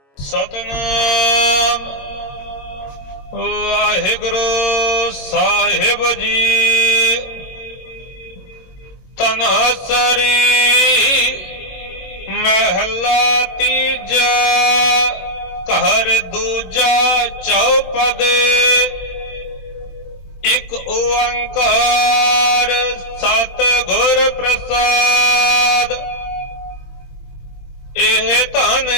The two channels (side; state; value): right; late; 22 ms